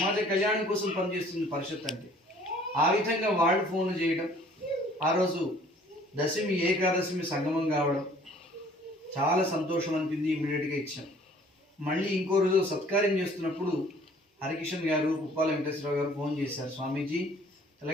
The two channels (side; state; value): both; normal; correlation 0.55